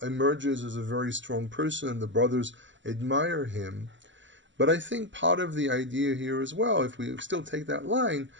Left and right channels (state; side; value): late; left; 0.54 ms